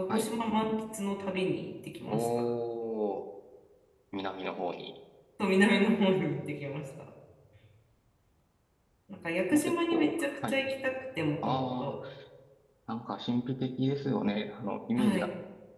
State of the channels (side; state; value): both; identical; correlation 1.00